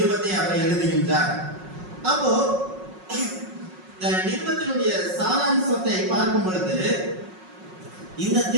அவர் எழுதுகின்றார். அப்போ இந்த நிருபத்தினுடைய சாராம்சத்தை பார்க்கும் பொழுது, இந்த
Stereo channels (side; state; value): left; late; 5.5 ms